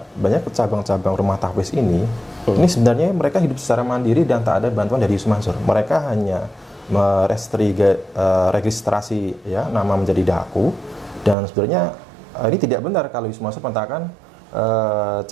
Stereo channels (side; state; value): left; drops out; at 11.4 s